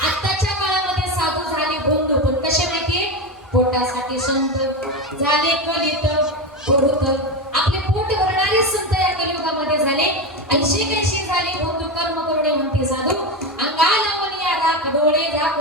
आत्ताच्या काळामध्ये साधू झाले भोंदू पण कसे माहितीये पोटासाठी संत झाले कलित पुरुत. आपले पोट भरणारे संत या कलियुगामध्ये झाले. 80 झाले भोंदू कर्म करुणे म्हणते साधू अंगाला मनिया राख डोळे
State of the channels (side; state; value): both; normal; correlation 0.17